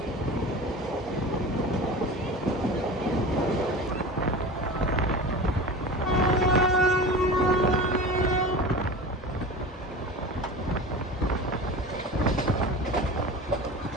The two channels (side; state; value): both; normal; correlation 0.33